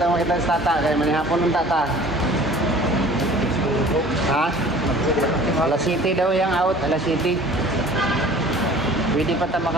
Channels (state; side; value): normal; both; correlation 0.47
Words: makitaan sa Tata. Kaya manihapon ng Tata. Ha? Alas City daw yung out. Alas City. Pwede pa ito